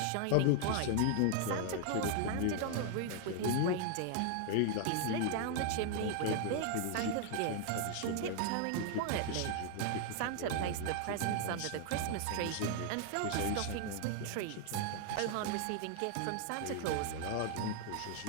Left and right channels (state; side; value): different; both; correlation 0.00